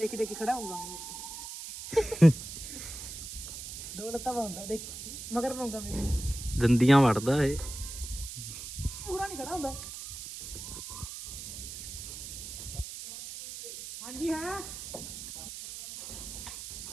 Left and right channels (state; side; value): noise; right; hiss, 9 dB below the sound